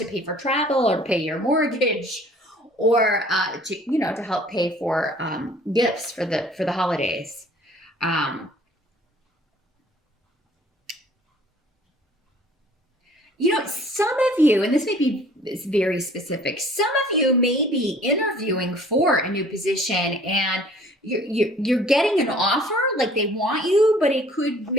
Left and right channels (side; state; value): both; normal; correlation 0.53